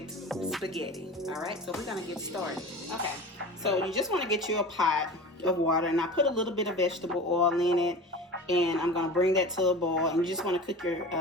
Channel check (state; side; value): normal; both; correlation 0.34